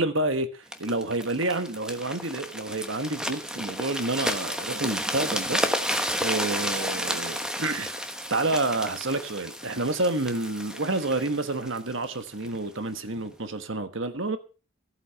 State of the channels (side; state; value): both; normal; correlation 0.09